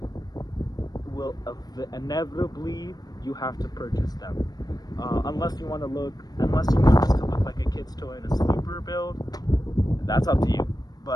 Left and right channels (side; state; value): right; late; 0.19 ms